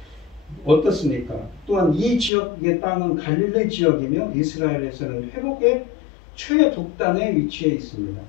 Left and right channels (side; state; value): right; drops out; at 2.3 s